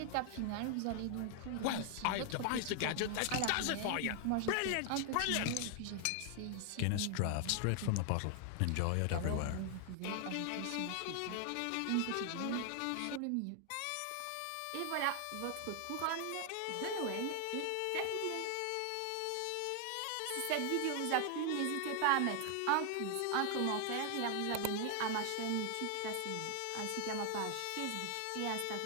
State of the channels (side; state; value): both; different; correlation 0.00